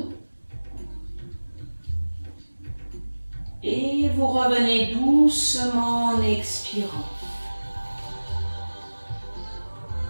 Et vous revenez doucement en expirant.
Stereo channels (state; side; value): inverted; both; correlation -1.00